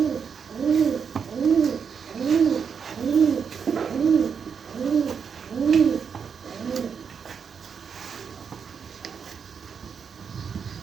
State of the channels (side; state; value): left; quieter; 6.6 dB